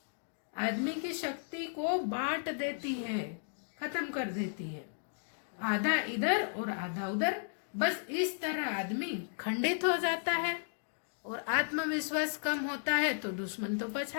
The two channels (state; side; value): silent; right; digital silence